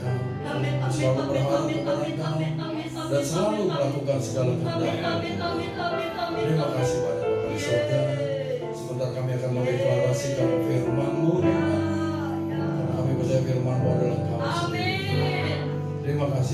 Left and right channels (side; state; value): both; identical; correlation 1.00